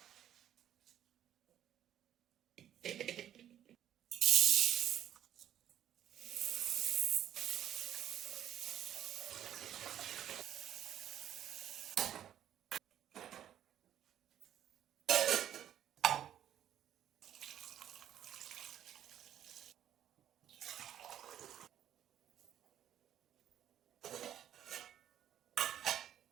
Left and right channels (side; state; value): left; quieter; 10.9 dB